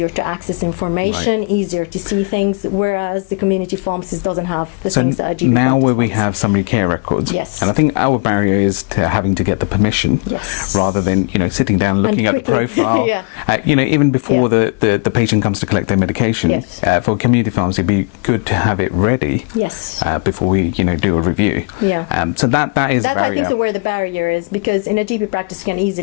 to access information, easier to see things, whereas the community pharmacist doesn't have the things that a GP now practice where we pharmacist. have summary care records, Yes. and I think our barrier is to having to get the permission, Yes. rather than sitting down and looking at the profile. Yeah. Even before the patient comes to collect their medication. Yes. For community pharmacy, it'd be good to have it ready. Yes. Before we do a review. Yeah. So that is That a barrier. I think is where the barrier is, because in a GP practice you can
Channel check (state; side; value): quieter; right; 33.0 dB